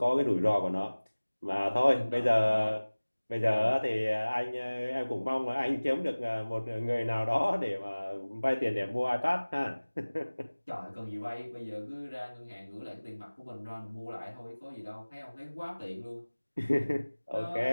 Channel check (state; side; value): inverted; both; correlation -1.00